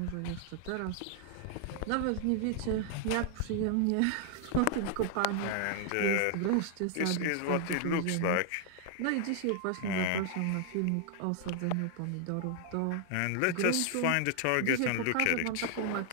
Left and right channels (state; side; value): different; both; correlation 0.00